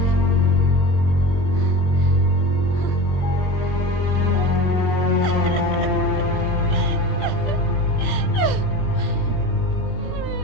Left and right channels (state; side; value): late; right; 20 ms